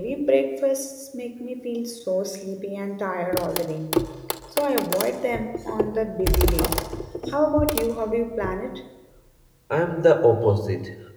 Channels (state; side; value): identical; both; correlation 1.00